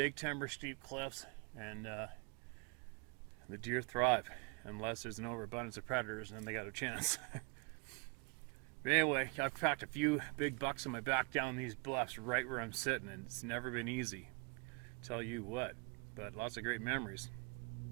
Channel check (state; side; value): quieter; left; 33.9 dB